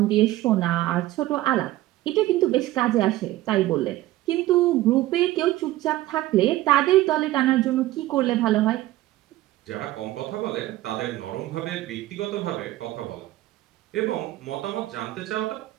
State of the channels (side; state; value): left; quieter; 16.0 dB